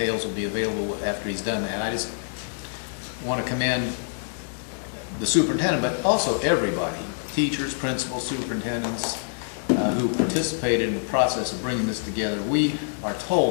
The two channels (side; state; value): right; silent; digital silence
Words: will be available after he's done that. I just want to commend the superintendent, but also everybody, teachers, principals, superintendents, who participated in the process of bringing this together. We are